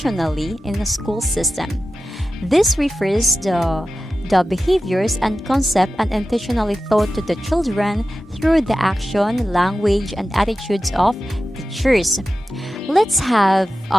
in a school system. This refers to the behaviors and concept unintentionally taught to the children through the action, language, and attitudes of teachers. Let's have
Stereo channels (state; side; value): normal; both; correlation 0.94